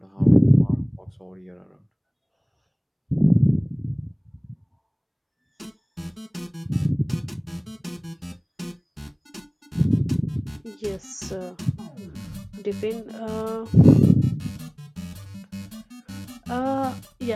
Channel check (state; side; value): identical; both; correlation 1.00